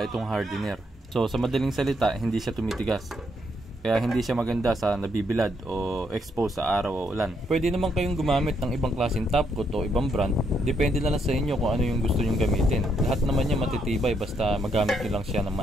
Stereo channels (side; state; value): both; normal; correlation 0.75